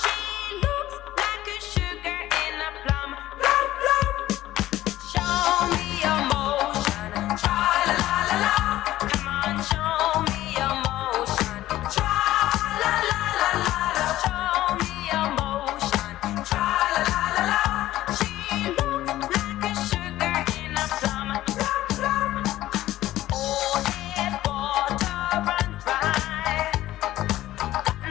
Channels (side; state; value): right; quieter; 14.9 dB